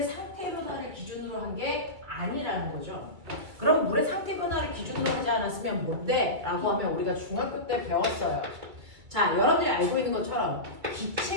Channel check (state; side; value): late; left; 2.3 ms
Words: 상태 변화를 기준으로 한 게 아니라는 거죠. 그럼 물의 상태 변화를 기준으로 하지 않았으면 뭔데? 라고 하면 우리가 중학교 때 배웠어요. 자, 여러분들이 알고 있는 것처럼